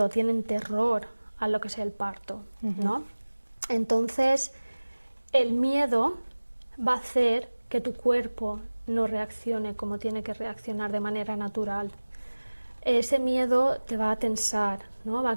tienen terror a lo que es el parto, ¿no? Entonces, el miedo va a hacer que tu cuerpo no reaccione como tiene que reaccionar de manera natural. Ese miedo te va a tensar, ¿no? Va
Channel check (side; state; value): both; inverted; correlation -1.00